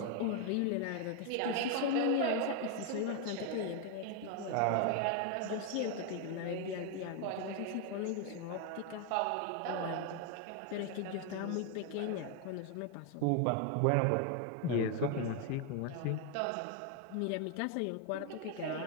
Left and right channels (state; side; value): different; both; correlation 0.01